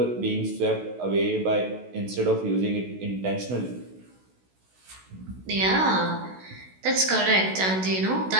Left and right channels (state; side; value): late; left; 16 ms